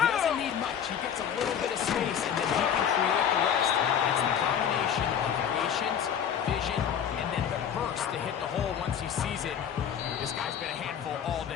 doesn't need much. He gets a little bit of space, and then he can create the rest. It's the combination of patience, vision, and then the burst to hit the hole once he sees it. This guy's been a handful all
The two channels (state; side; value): quieter; right; 8.5 dB